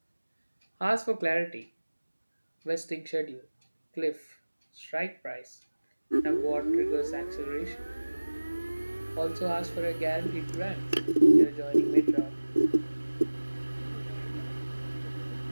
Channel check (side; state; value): both; inverted; correlation -1.00